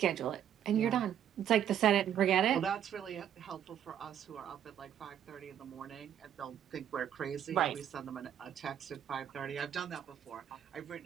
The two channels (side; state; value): left; quieter; 9.8 dB